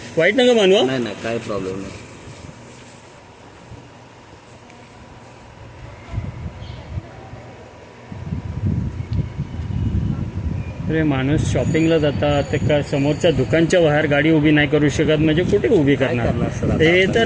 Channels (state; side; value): identical; both; correlation 1.00